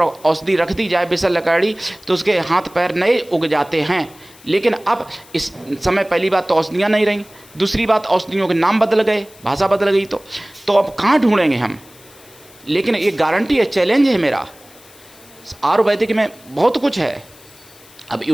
रख दी जाए विशल्यकरणी, तो उसके हाथ पैर नए उग जाते हैं। लेकिन अब इस समय पहली बात तो औषधियाँ नहीं रहीं, दूसरी बात औषधियों के नाम बदल गए, भाषा बदल गई। तो अब कहाँ ढूंढेंगे हम? लेकिन ये गारंटी है, चैलेंज है मेरा, आयुर्वेदिक में बहुत कुछ है। अब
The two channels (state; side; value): noise; left; hiss, 24 dB below the sound